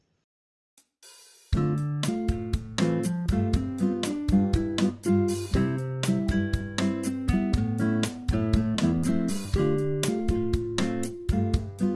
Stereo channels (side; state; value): both; identical; correlation 1.00